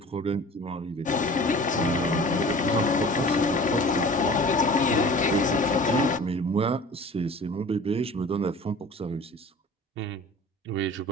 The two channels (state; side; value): normal; both; correlation 0.42